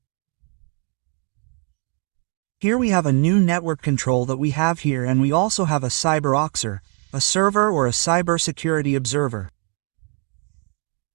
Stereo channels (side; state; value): left; quieter; 39.4 dB